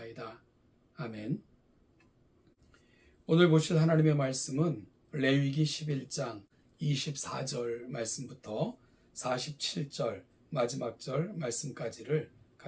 아멘. 오늘 보실 하나님의 말씀은 레위기 11장 24절 말씀부터 47절 마지막 절 말씀까지를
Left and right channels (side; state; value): both; identical; correlation 1.00